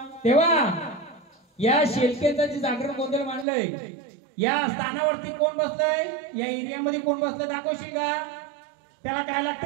तेव्हा या शेलकेचं जे जागरण गोंधळ मांडलंय या स्थानावरती कोण बसलंय? या एरियामध्ये कोण बसलंय दाखवशील का? त्याला काय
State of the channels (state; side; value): drops out; left; at 3.5 s